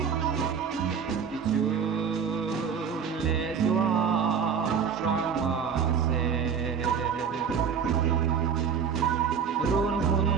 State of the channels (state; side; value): quieter; left; 6.8 dB